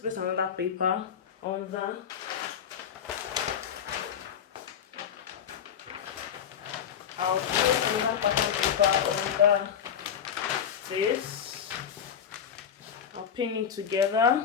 another paper on that. I'll place another pattern paper under this. I'll pin it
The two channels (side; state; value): right; quieter; 8.2 dB